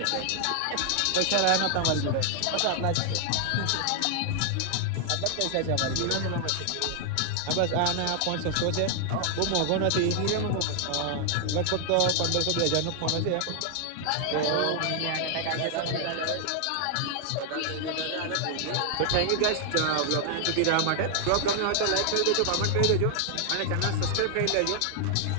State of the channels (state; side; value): different; both; correlation 0.00